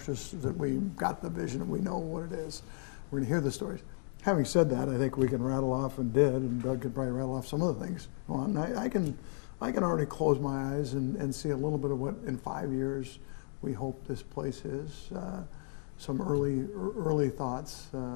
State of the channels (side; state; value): right; silent; 55 dB below the other